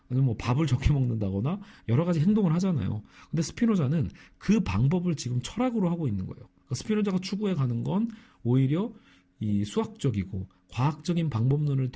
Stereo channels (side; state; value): both; identical; correlation 1.00